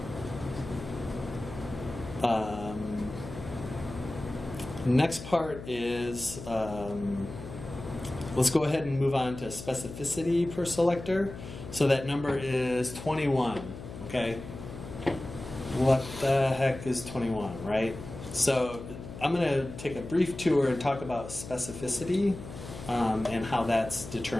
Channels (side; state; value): left; noise; hum, 12 dB below the sound